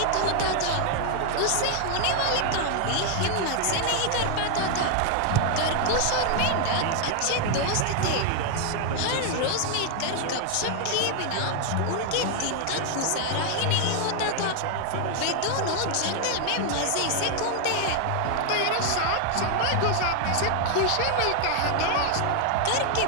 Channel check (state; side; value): different; both; correlation 0.00